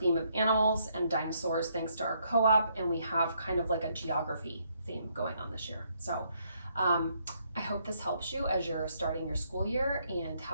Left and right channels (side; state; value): both; inverted; correlation -0.72